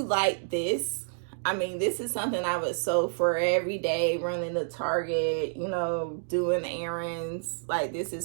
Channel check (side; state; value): left; silent; digital silence